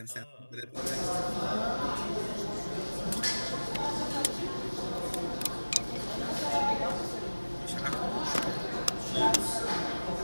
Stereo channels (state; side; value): inverted; both; correlation -1.00